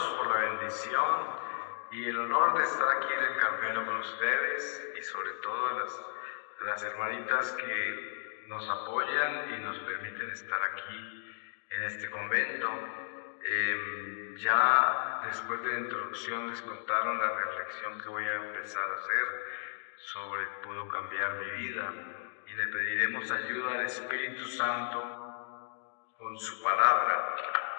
por la bendición y el honor de estar aquí en el Carmelo con ustedes y sobre todo las hermanitas que nos apoyan y nos permiten estar aquí en este convento. Ya después de la introducción les contaron la reflexión que voy a empezar a hacer sobre puedo cambiar mi vida, y le pediremos ayuda al Espíritu Santo con su palabra.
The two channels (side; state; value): right; silent; digital silence